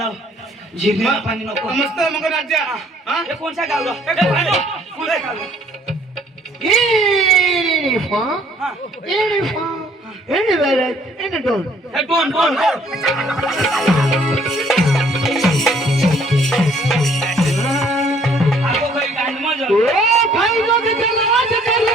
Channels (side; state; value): both; normal; correlation 0.61